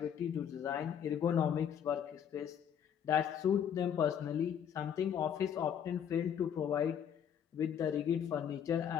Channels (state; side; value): quieter; right; 8.6 dB